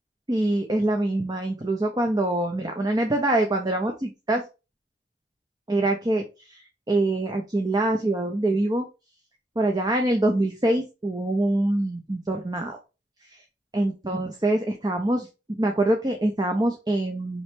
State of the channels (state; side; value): normal; both; correlation 0.76